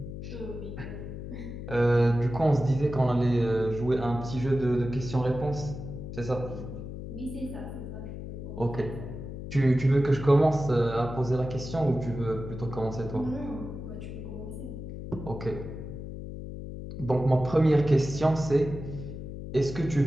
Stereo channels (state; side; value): noise; left; hum, 9 dB below the sound